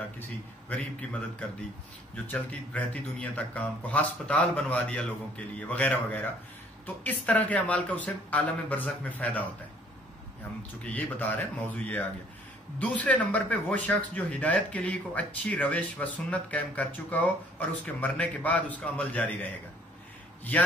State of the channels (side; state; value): both; normal; correlation 0.59